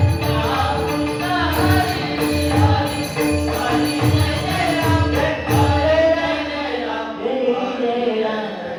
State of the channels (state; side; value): identical; both; correlation 1.00